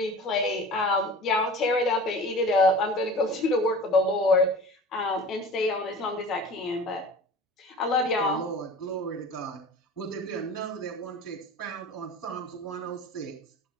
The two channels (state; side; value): normal; both; correlation 0.38